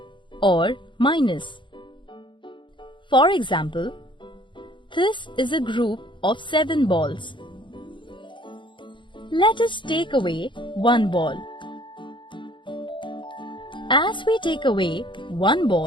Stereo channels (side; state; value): right; late; 0.23 ms